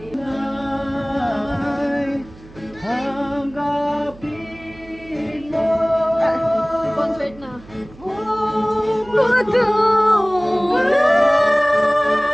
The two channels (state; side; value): noise; right; hum, 21 dB below the sound